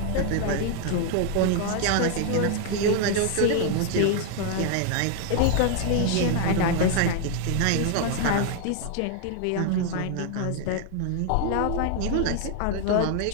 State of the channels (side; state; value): both; different; correlation 0.01